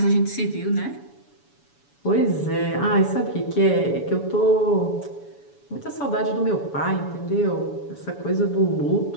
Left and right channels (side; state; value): right; late; 7.1 ms